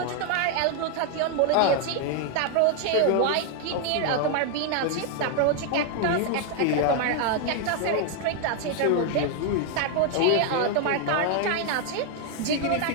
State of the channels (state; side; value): different; both; correlation 0.00